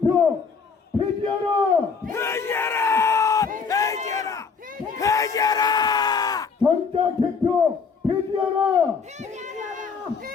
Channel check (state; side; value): quieter; right; 5.4 dB